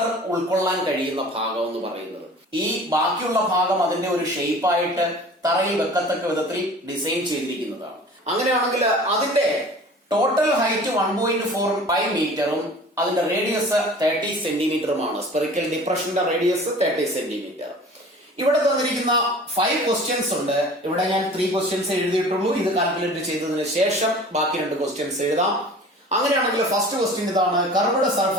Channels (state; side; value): normal; both; correlation 0.44